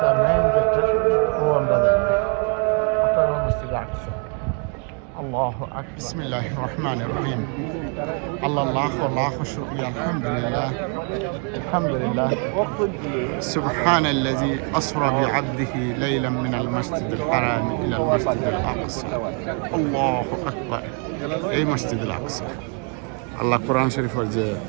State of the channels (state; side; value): quieter; left; 38.2 dB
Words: মেইন যেটা ও আমরা যাইয়া ওটা মসজিদ আকসা الله أكبر بسم الله الرحمن الرحيم الله الله شكرا الحمد لله سبحان الذي أسرى بعبده ليلا من المسجد الحرام إلى المسجد الأقصى الله أكبر أي مسجد الأقصى الله قرآن شريف ورجع